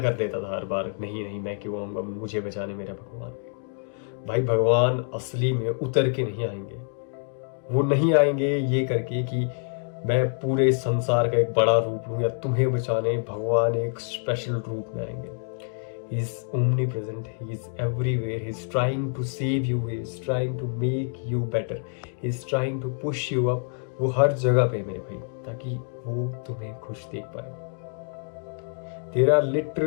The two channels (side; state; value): right; silent; 56 dB below the other